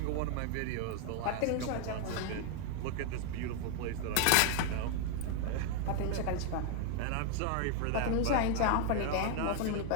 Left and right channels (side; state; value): both; different; correlation 0.00